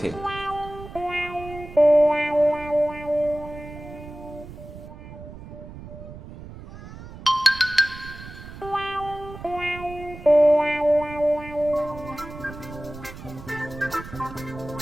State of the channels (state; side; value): noise; right; rumble, 14 dB below the sound